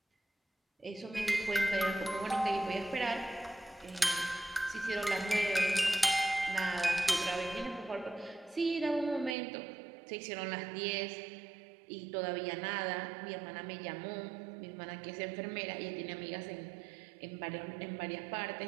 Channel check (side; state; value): left; drops out; at 9.3 s